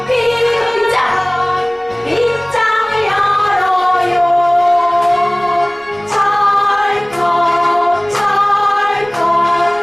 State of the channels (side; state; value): right; noise; rumble, 28 dB below the sound